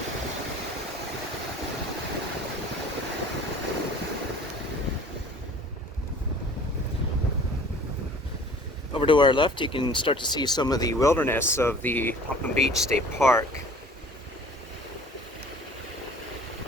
Over to our left, you can start to see some of the wilderness of the Popham Beach State Park.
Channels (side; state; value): both; normal; correlation 0.48